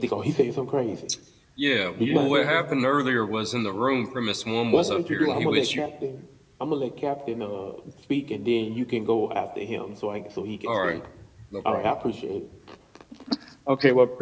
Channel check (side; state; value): both; identical; correlation 1.00